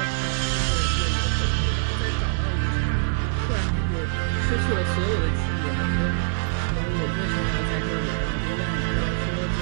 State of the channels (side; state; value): left; silent; digital silence